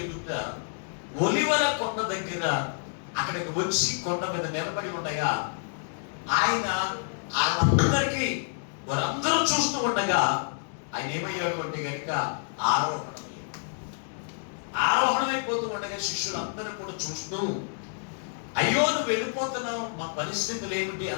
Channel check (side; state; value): right; silent; digital silence